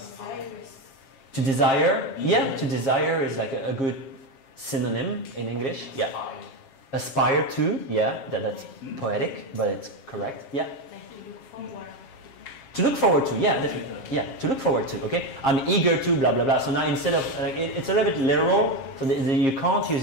To desire. Yeah. To desire is like a good synonym in English. Yeah. Aspire to. Yeah. That's poetic, but it's correct. Yeah. To look forward to, yeah, definitely. Yeah, to look forward to, okay? I'm eager to, blah, blah, blah. So now instead of, it's a little bit literal, so you can't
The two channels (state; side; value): late; right; 7.4 ms